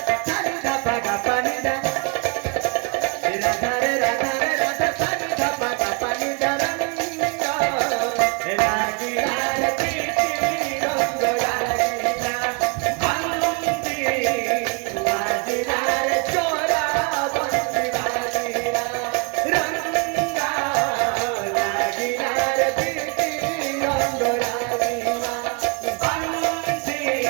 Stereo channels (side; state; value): left; quieter; 34.5 dB